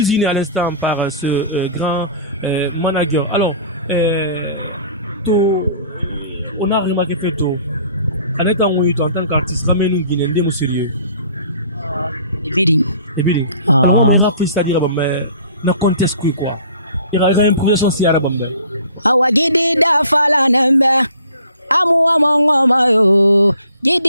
à l'instant par ce grand manager. Alors, on a remarqué que en étant en tant qu'artiste, ramène une Guinée, nous sérieux. Ibiri. Et bien, Ah. on a fait ça dire, mais na conteste quoi. Il y a une impression si arabe. Awa gidi da fala nembe. Amu amongoma yo.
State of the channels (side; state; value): both; inverted; correlation -0.51